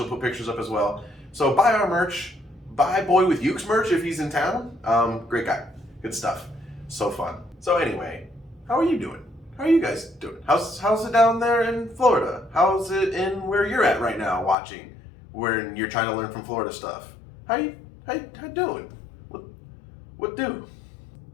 put pictures up as well. So buy our merch. Buy Boy with Uke's merch if he's in town. Great guy. Good stuff. So fun. So anyway, how are you doing? How are you guys doing? How's it down there in Florida? How's it in where you're at right now watching? Where you're trying to learn from Florida stuff. How you doing? What do?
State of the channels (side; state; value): right; drops out; at 14.6 s